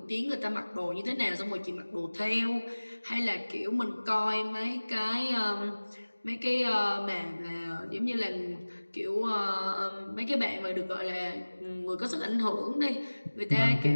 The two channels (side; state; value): both; inverted; correlation -1.00